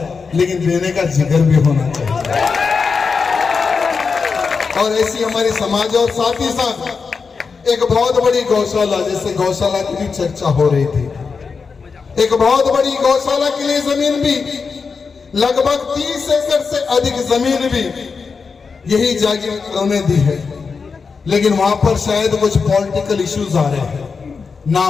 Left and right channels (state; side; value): quieter; right; 5.1 dB